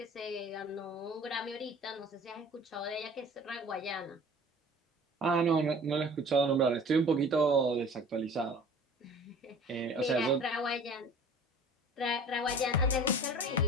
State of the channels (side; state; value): both; normal; correlation 0.44